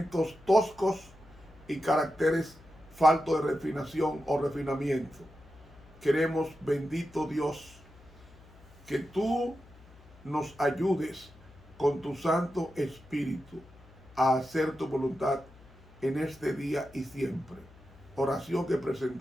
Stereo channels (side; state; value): left; noise; hum, 23 dB below the sound